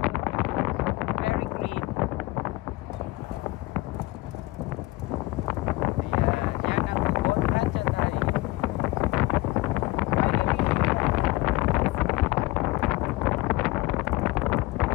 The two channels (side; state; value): right; quieter; 19.9 dB